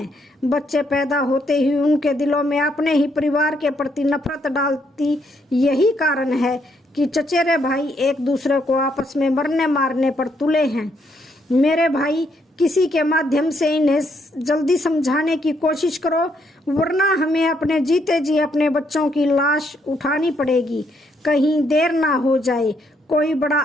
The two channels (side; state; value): both; normal; correlation 0.73